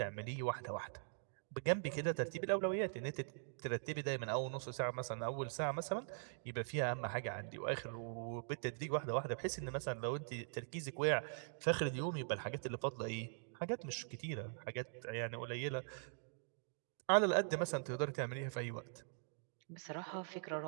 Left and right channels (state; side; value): silent; left; digital silence